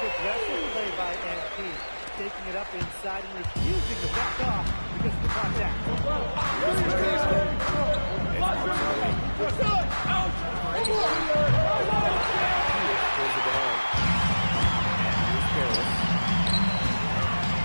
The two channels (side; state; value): both; inverted; correlation -1.00